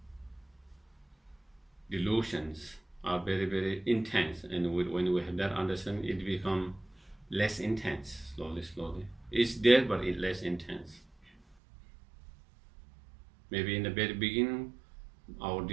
delusions are very, very intense, and when we have that understanding, it becomes less intense, slowly. It's there, but it's less intense. Maybe in the very beginning, our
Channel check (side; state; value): left; drops out; at 11.6 s